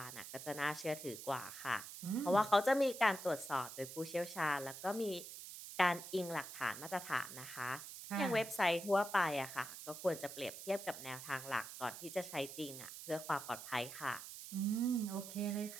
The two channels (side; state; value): right; noise; hiss, 11 dB below the sound